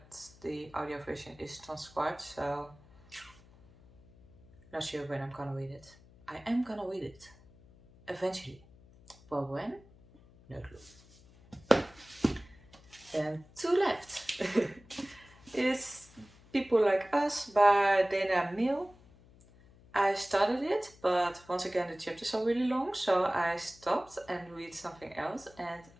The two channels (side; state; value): left; noise; hum, 25 dB below the sound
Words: the audio version is transcribed, so not sure when I'm gonna read it. I am gonna read it eventually, but when? No clue. And two left is People Like Us by Dana Mill. I started it, but once again the chapters are really long, so I stopped and read something else, and